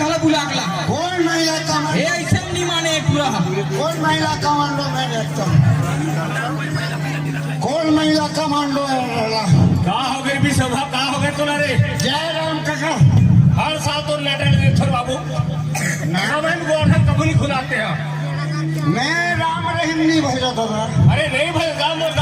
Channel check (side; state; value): both; identical; correlation 1.00